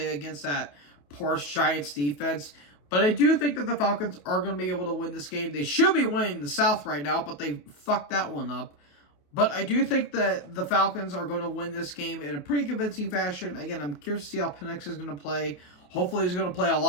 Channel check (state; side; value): late; right; 28 ms